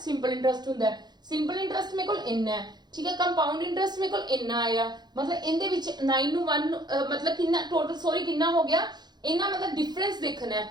ਇੰਟਰਸਟ ਹੁੰਦਾ ਹੈ। ਸਿੰਪਲ ਇੰਟਰਸਟ ਮੇਰੇ ਕੋਲ ਇੰਨਾ ਹੈ, ਠੀਕ ਹੈ। ਕੰਪਾਊਂਡ ਇੰਟਰਸਟ ਮੇਰੇ ਕੋਲ ਇੰਨਾ ਆਇਆ ਮਤਲਬ ਇਹਦੇ ਵਿੱਚ 9 ਨੂੰ 1 ਮਤਲਬ ਕਿੰਨਾ ਟੋਟਲ ਸੌਰੀ ਕਿੰਨਾ ਹੋ ਗਿਆ ਇਹਨਾਂ ਮਤਲਬ ਡਿਫਰੈਂਸ ਦੇਖਣਾ ਹੈ।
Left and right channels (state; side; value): late; left; 0.21 ms